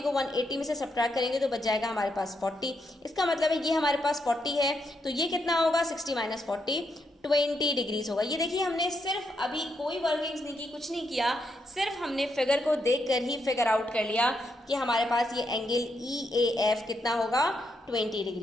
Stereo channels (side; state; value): both; normal; correlation 0.80